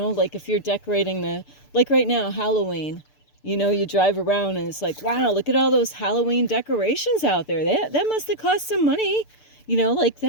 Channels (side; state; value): right; late; 6.8 ms